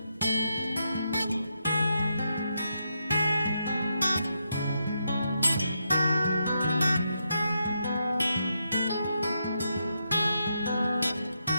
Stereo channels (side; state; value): both; inverted; correlation -0.82